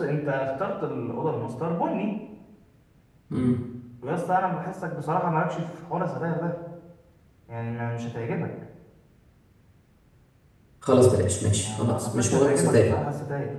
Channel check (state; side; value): identical; both; correlation 1.00